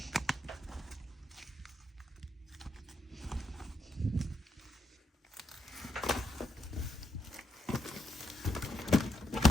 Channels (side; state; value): both; normal; correlation 0.79